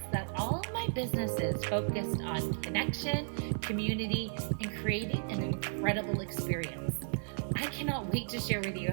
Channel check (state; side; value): silent; left; digital silence